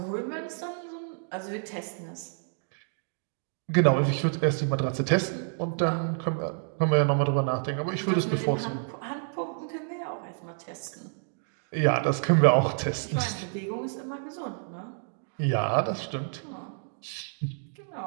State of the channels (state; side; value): silent; left; digital silence